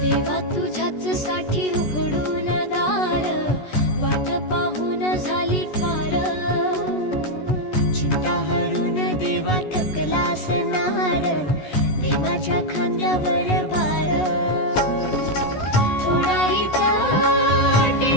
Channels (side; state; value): right; late; 14 ms